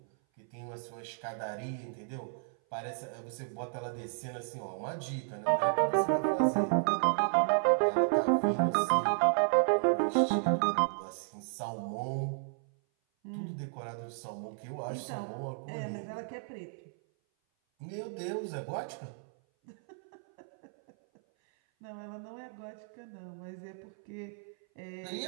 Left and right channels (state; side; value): silent; left; 56 dB below the other